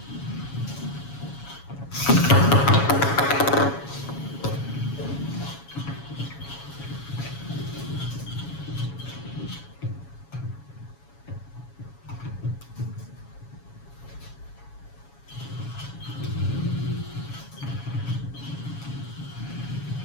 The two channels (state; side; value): late; right; 7.2 ms